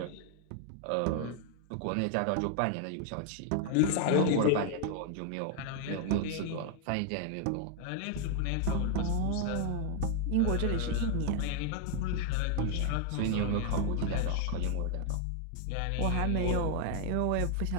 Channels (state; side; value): different; both; correlation 0.00